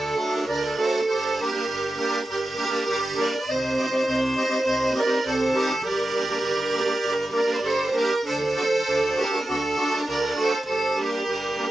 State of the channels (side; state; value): both; normal; correlation 0.92